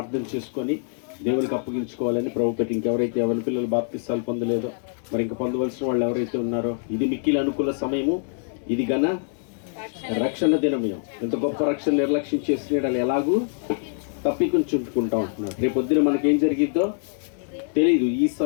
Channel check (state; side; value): silent; right; digital silence